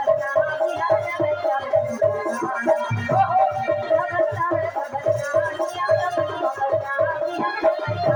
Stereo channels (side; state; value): both; identical; correlation 1.00